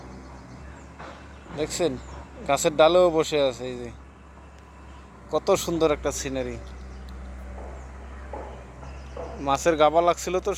দেখছেন গাছের ডালেও বসে আছে। এই যে কত সুন্দর একটা সিনারি। মাছের গাবা লাগছিল তো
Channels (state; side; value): identical; both; correlation 1.00